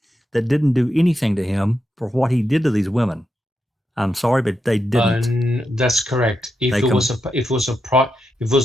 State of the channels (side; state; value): both; normal; correlation 0.85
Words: that didn't do anything to him for what he did to these women. I'm sorry, but they didn't. That's correct. If it